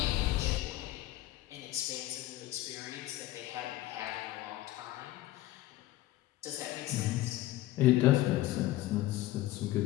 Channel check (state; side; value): quieter; right; 16.0 dB